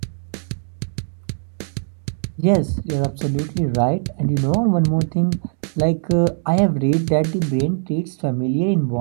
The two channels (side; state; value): left; silent; digital silence